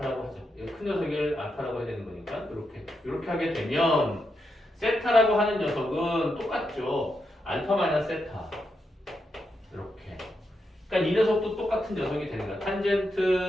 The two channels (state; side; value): normal; both; correlation 0.84